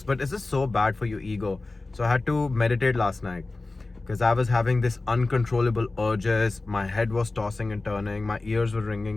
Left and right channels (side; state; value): right; quieter; 3.3 dB